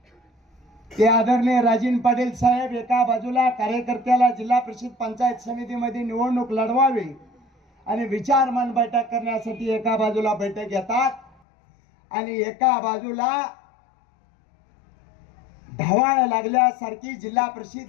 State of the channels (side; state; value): right; drops out; at 11.3 s